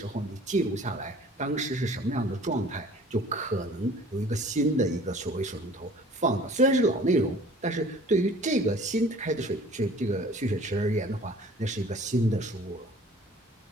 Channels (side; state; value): both; normal; correlation 0.49